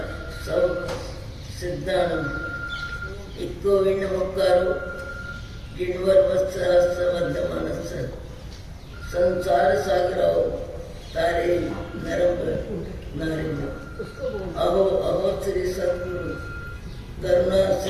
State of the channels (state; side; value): identical; both; correlation 1.00